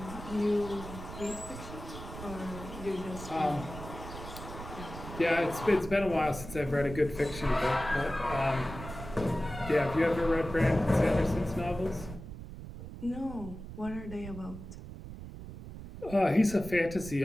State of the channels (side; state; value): right; noise; rumble, 11 dB below the sound